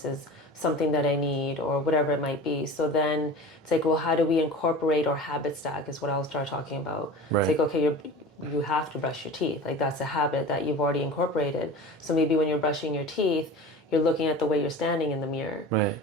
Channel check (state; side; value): normal; both; correlation 0.35